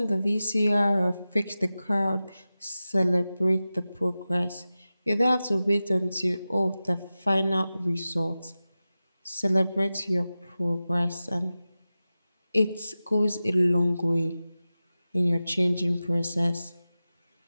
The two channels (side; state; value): both; inverted; correlation -0.95